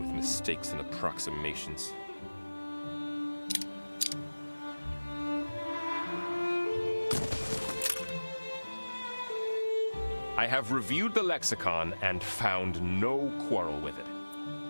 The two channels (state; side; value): inverted; both; correlation -1.00